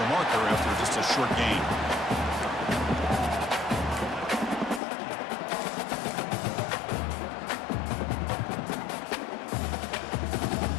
marker after just a short gain.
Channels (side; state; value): right; drops out; at 4.8 s